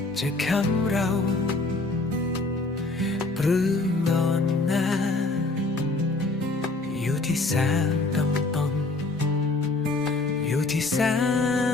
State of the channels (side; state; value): right; quieter; 3.2 dB